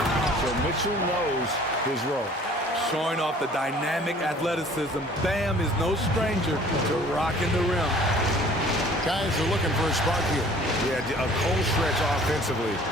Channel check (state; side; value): normal; both; correlation 0.52